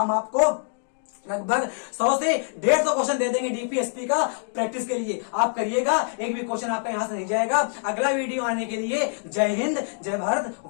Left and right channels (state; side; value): silent; right; digital silence